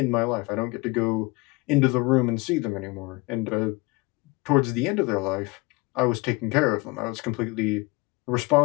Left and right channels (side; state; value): right; quieter; 24.0 dB